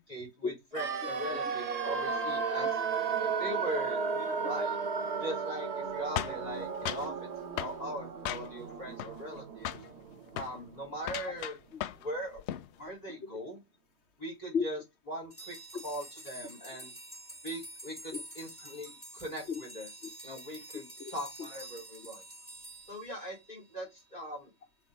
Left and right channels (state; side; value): late; right; 3.2 ms